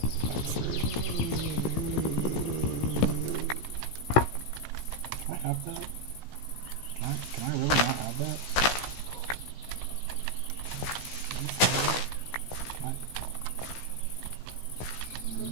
That was rude. Can I have that? Can I really not have that?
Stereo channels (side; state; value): right; late; 16 ms